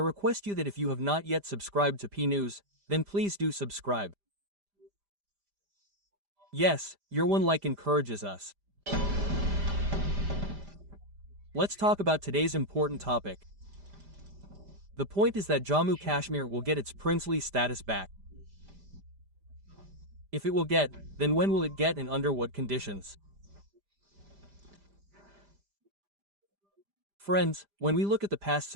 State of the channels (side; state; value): left; late; 5.0 ms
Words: you that if you have not yet subscribed to P News, then please do subscribe. Yes, your one like encourages us. Let's talk about today's important topic. The point is that Jammu Kashmir will get its princely status back. If it will get, then when will it get and under what conditions? Friends, when we look at the past